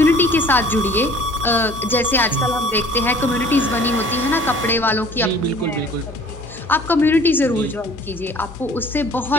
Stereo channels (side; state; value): both; normal; correlation 0.51